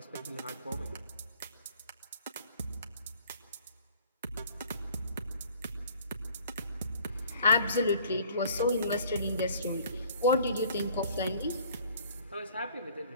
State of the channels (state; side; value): inverted; both; correlation -0.54